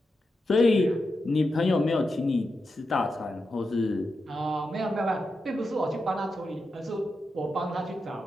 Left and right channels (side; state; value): both; normal; correlation 0.88